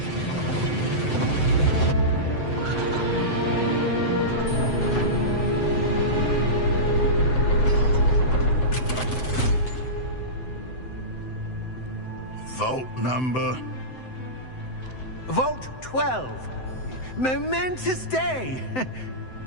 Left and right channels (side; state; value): right; late; 7.8 ms